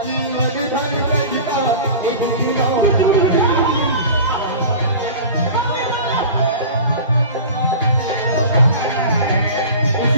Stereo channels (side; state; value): both; inverted; correlation -0.37